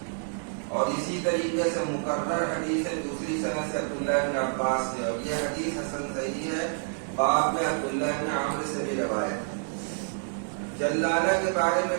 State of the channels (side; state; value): left; silent; digital silence